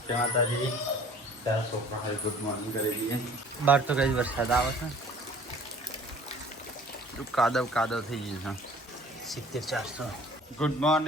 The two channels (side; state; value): both; normal; correlation 0.49